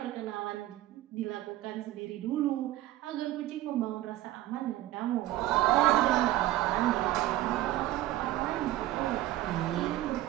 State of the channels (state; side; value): quieter; left; 15.0 dB